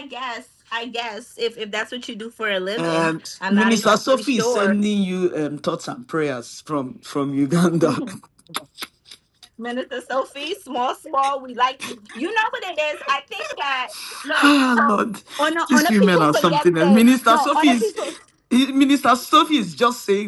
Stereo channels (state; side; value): identical; both; correlation 1.00